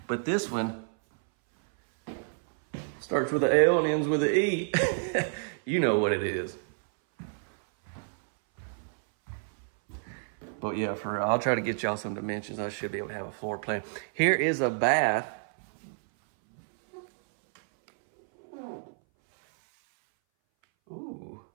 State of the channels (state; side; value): silent; left; 58 dB below the other